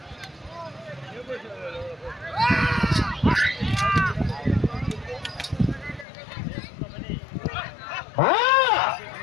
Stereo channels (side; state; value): right; drops out; at 6.1 s